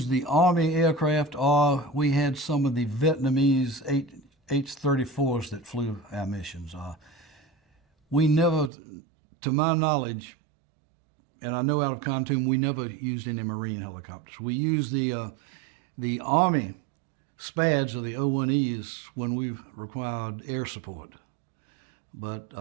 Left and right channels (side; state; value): left; drops out; at 8.7 s